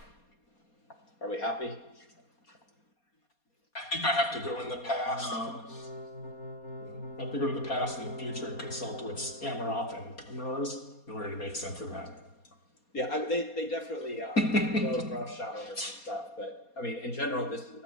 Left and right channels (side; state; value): right; late; 4.2 ms